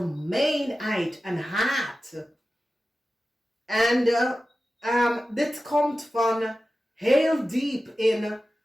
en haat. En dit komt van heel diep in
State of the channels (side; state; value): both; normal; correlation 0.94